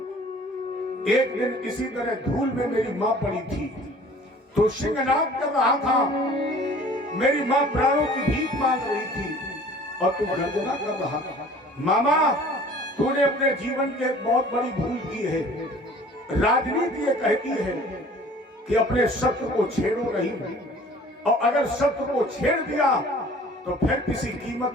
एक दिन इसी तरह धूल में मेरी माँ पड़ी थी, तो सिंहनाद कर रहा था, मेरी माँ प्राणों की भीख मांग रही थी, और तू गर्जना कर रहा था। मामा तूने अपने जीवन की एक बहुत बड़ी भूल की है। राजनीति ये कहती है कि अपने शत्रु को छेड़ो नहीं, और अगर शत्रु को छेड़ दिया तो फिर किसी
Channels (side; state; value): both; normal; correlation 0.49